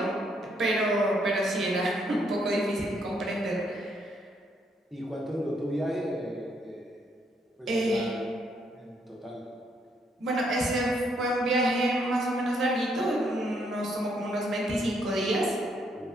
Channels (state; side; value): normal; both; correlation 0.73